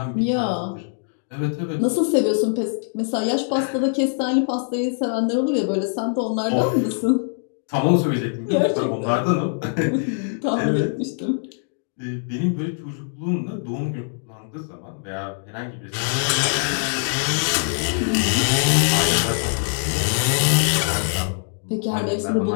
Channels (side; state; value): right; silent; digital silence